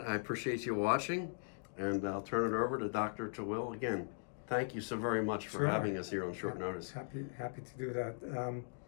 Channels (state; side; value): silent; right; digital silence